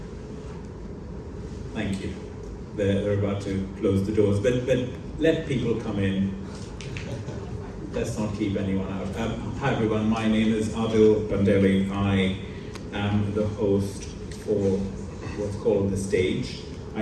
Thank you. They're about to close the doors, but let people come in. Let's not keep anyone out. Hi everyone, my name is Adil Bandeli. I am the host for what's called the stage.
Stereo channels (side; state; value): both; identical; correlation 1.00